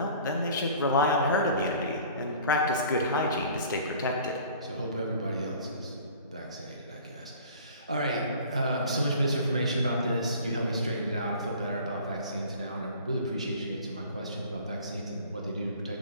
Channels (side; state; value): both; inverted; correlation -0.47